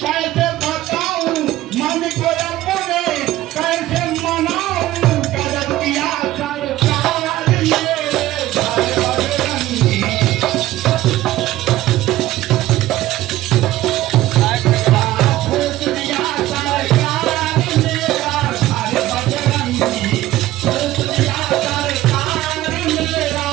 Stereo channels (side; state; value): left; quieter; 15.5 dB